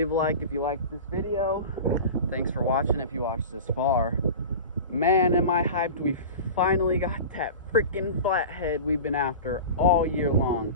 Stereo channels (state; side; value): inverted; both; correlation -0.33